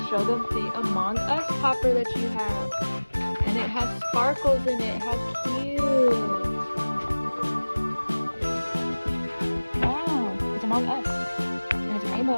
show them the Among Us popper that you have. And it has sparkles in it. How cute. Among Us. And it's rainbow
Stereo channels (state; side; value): inverted; both; correlation -1.00